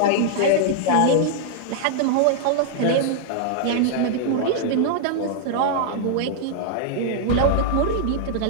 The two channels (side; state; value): both; different; correlation -0.01